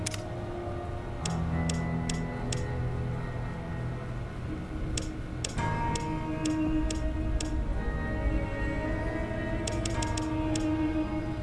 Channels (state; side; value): identical; both; correlation 1.00